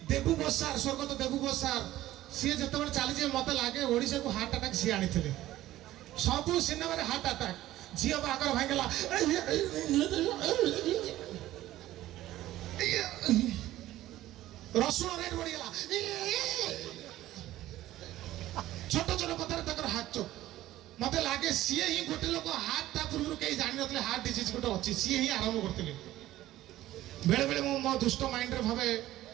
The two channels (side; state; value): left; quieter; 14.9 dB